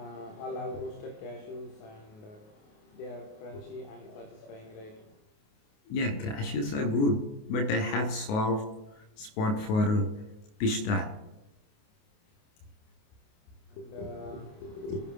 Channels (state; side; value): late; right; 28 ms